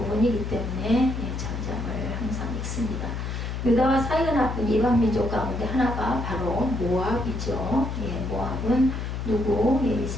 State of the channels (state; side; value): noise; left; hum, 4 dB below the sound